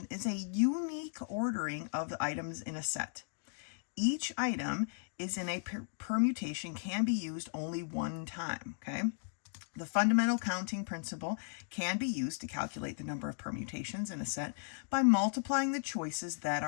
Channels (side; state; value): right; silent; digital silence